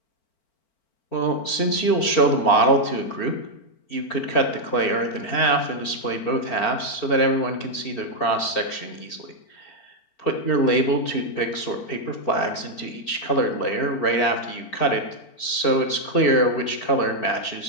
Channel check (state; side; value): late; right; 4.4 ms